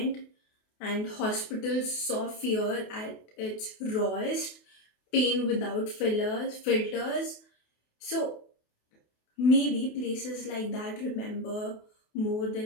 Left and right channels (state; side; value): late; right; 28 ms